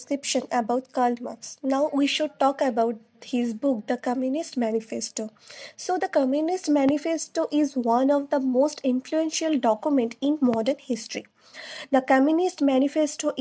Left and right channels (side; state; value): both; identical; correlation 1.00